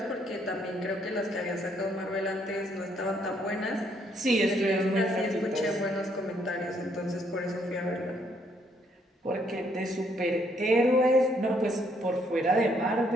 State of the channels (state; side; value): normal; both; correlation 0.70